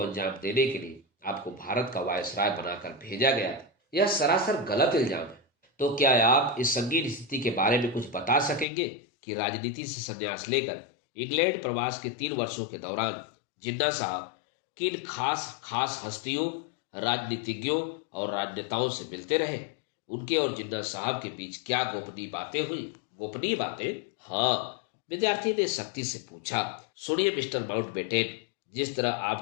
अंजाम देने के लिए आपको भारत का वायसराय बनाकर भेजा गया था। यह सरासर गलत इल्जाम है। तो क्या आप इस संगीन स्थिति के बारे में कुछ बता सकेंगे कि राजनीति से संन्यास लेकर इंग्लैंड प्रवास के 3 वर्षों के दौरान जिन्ना साहब किन खास खास हस्तियों, राजनीतिज्ञों और राजनेताओं से मिलते रहे? उनके और जिन्ना साहब के बीच क्या गोपनीय बातें हुई? गोपनीय बातें? हाँ, विद्यार्थी ने सख्ती से पूछा। सुनिए मिस्टर माउंटबेटन, जिस तरह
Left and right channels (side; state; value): right; drops out; at 8.7 s